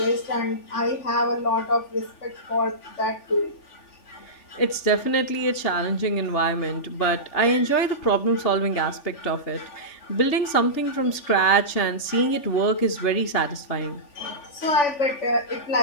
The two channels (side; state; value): right; late; 3.4 ms